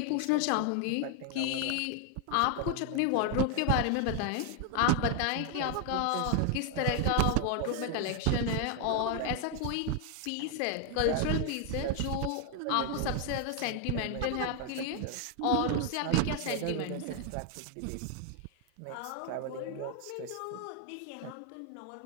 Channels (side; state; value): both; different; correlation 0.00